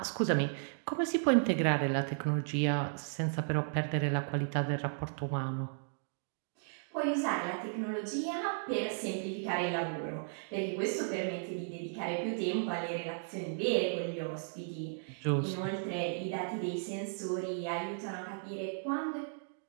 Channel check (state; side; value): silent; left; digital silence